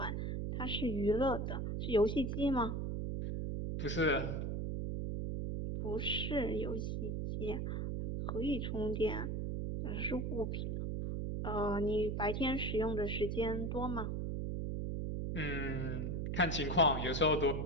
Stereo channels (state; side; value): noise; right; hum, 1 dB below the sound